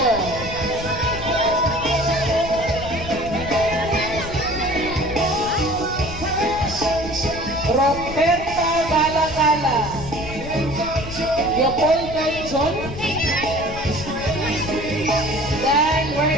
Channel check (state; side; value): noise; left; rumble, 10 dB below the sound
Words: Roberta Gala Gala. Leopoldo John. Then